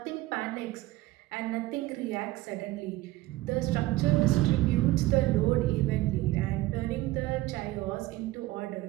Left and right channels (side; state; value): left; quieter; 17.5 dB